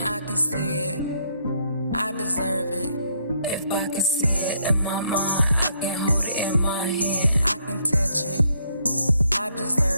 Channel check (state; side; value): inverted; both; correlation -0.71